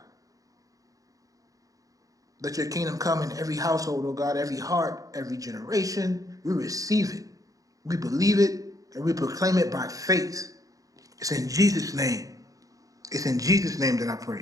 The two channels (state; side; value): late; left; 0.17 ms